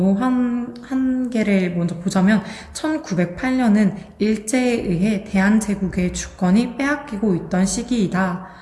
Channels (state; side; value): identical; both; correlation 1.00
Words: 한 개를 먼저 보자면 1908년은 일제에 의해 대한제국의 주권이 빼앗기고 있던 시기이다.